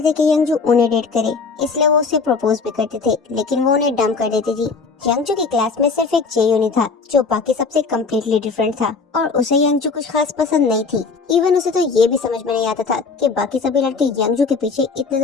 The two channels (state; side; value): quieter; right; 4.7 dB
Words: थे कि यंगजू उन्हें डेट करे, इसलिए वो उसे प्रपोज भी करते थे, लेकिन वो उन्हें डंप कर देती थी। यंगजू की क्लास में सिर्फ एक जेयुन ही था जो बाकी सबसे कम्प्लीटली डिफरेंट था और उसे यंगजू कुछ खास पसंद नहीं थी। इवन उसे तो ये भी समझ में नहीं आता था कि बाकी सभी लड़के यंगजू के पीछे इतने